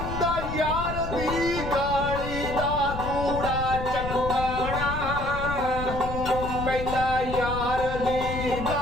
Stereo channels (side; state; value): left; noise; rumble, 6 dB below the sound